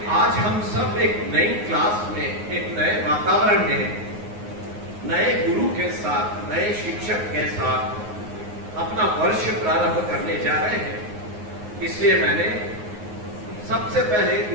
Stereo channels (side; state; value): left; late; 9.5 ms